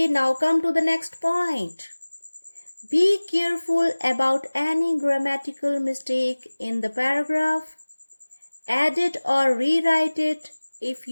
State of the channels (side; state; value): both; inverted; correlation -1.00